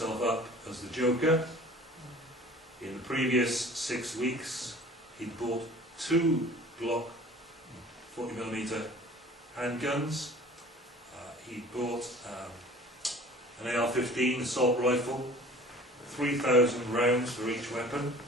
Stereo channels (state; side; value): normal; both; correlation 0.46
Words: up as the Joker. In the previous 6 weeks, he'd bought 2 Glock 40mm handguns. He'd bought an AR-15 assault rifle, 3,000 rounds for each weapon,